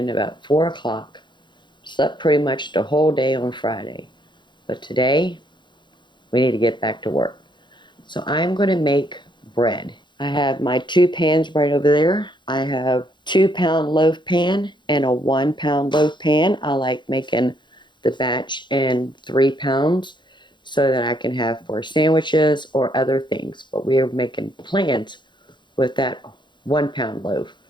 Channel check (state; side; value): late; right; 0.22 ms